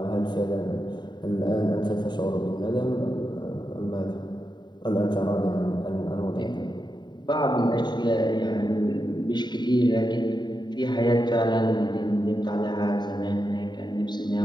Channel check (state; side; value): late; right; 0.21 ms